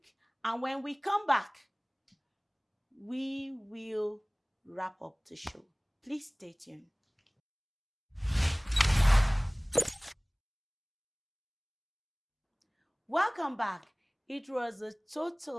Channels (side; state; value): both; identical; correlation 1.00